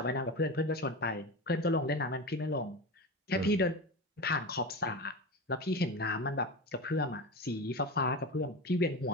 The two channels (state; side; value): normal; both; correlation 0.24